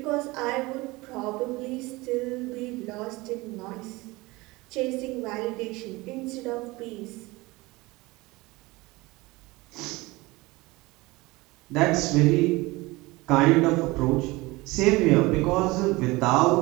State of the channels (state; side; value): quieter; left; 22.0 dB